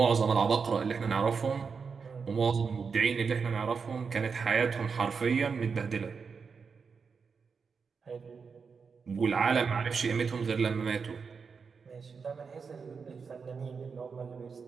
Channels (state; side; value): quieter; left; 5.5 dB